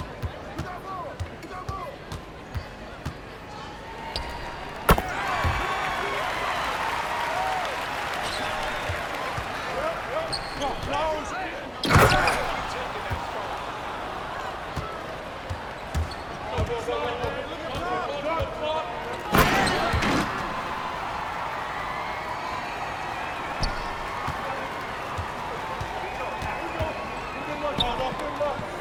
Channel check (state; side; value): identical; both; correlation 1.00